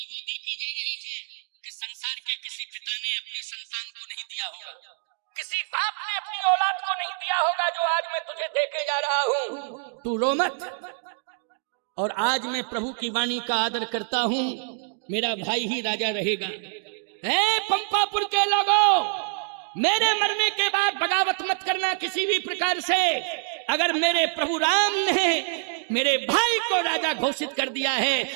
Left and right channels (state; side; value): silent; left; digital silence